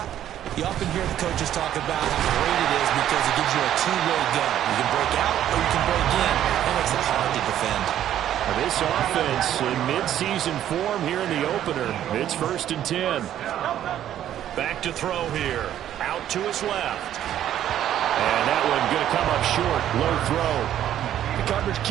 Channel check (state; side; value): quieter; left; 11.3 dB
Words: you often hear the coaches talk about how great it is because it gives you a two-way go. You can break out or you can break in. That makes it hard to defend. This offense in mid-season form here in the opener. It's 1st and 10. Back to throw here. Out to his left. And that one going to come up short. Low throw. The coverage